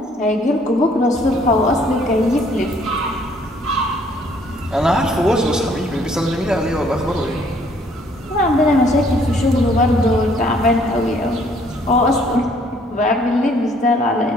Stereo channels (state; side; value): normal; both; correlation 0.62